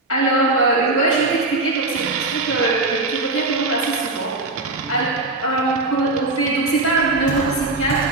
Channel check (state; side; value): quieter; left; 3.1 dB